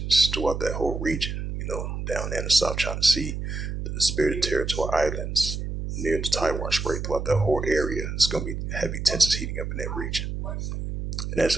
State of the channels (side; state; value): right; noise; hum, 4 dB below the sound